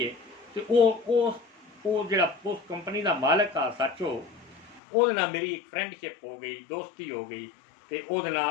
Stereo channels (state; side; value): drops out; right; at 4.8 s